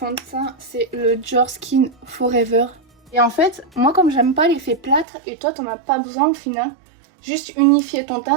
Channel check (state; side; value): drops out; left; at 5.1 s